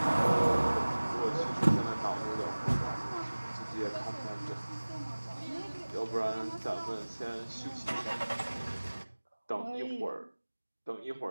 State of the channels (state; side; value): inverted; both; correlation -1.00